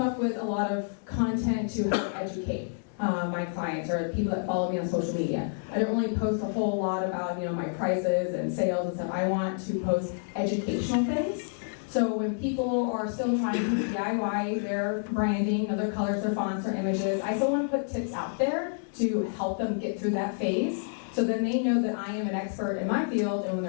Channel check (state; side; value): silent; right; digital silence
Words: with a lot of content to help educate my clients or the people that follow me on social media. I don't really post a whole lot about my prices and sales and stuff. I want to post educational things. So when people are still trying to DIY their branding, their colors, their fonts, their images, I still want to put tips out there to help them get through that phase. So then they know that I am an expert in my field, and when